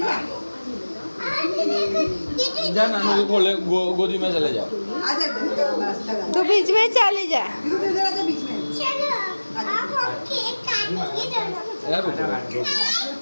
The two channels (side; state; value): both; inverted; correlation -1.00